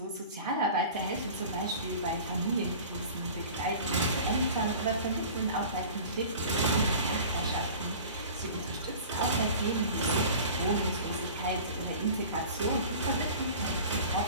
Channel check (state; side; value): inverted; both; correlation -0.40